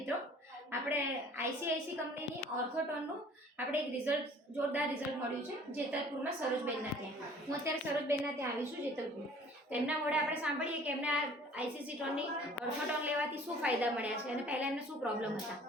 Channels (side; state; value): both; normal; correlation 0.51